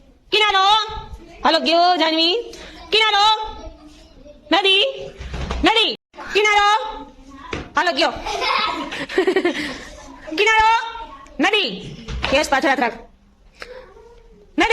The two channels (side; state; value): both; identical; correlation 1.00